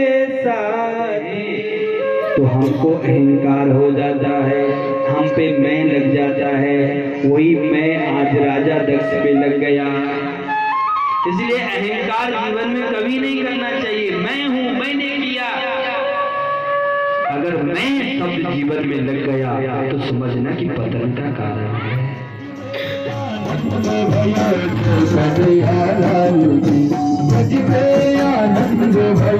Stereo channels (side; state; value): both; identical; correlation 1.00